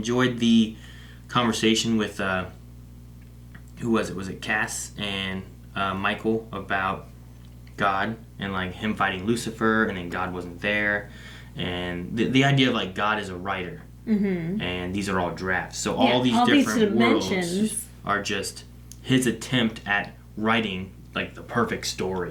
the conversation with who was it? Was it Cass and Michael about God and like him fighting Lucifer, and then God wasn't there, and the idea of like God is a writer. Mm-hmm. And these are all drafts. So all these different worlds are just his attempt at writing like the perfect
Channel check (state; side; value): identical; both; correlation 1.00